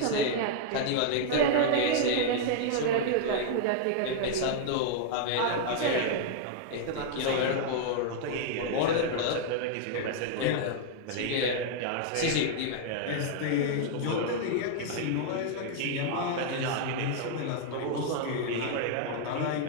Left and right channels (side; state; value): both; different; correlation -0.01